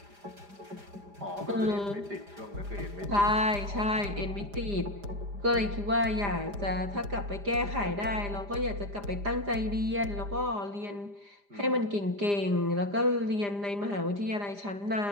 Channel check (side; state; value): left; late; 5.0 ms